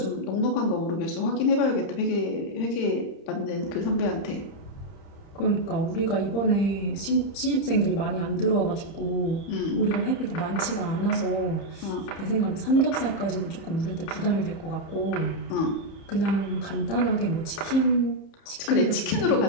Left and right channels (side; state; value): right; late; 30 ms